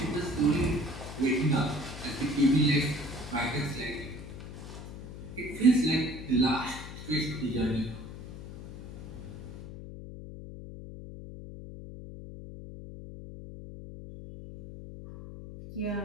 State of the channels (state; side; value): noise; left; hum, 11 dB below the sound